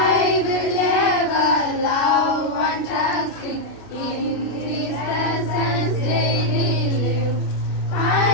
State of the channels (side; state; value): right; late; 32 ms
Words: will ever love and trust Him, in His presence daily live.